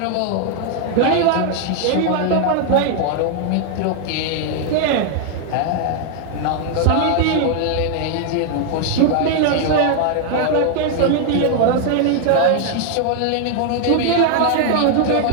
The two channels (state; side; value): different; both; correlation 0.00